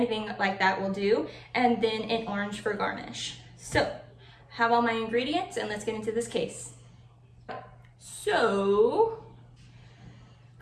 like that will do, and then an orange for garnish. So, have all my ingredients, and let's get into this case. So,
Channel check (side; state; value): both; identical; correlation 1.00